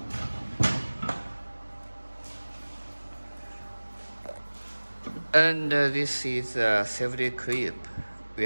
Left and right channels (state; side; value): inverted; both; correlation -1.00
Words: And this is a safety clip. We